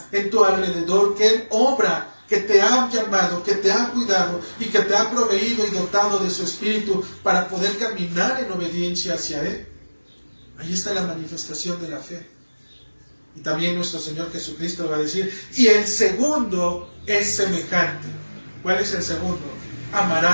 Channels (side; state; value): both; inverted; correlation -1.00